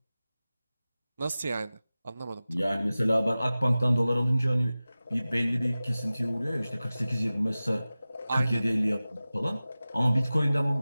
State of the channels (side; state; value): both; inverted; correlation -0.96